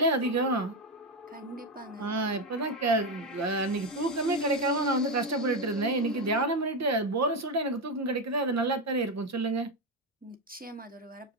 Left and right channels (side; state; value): both; normal; correlation 0.11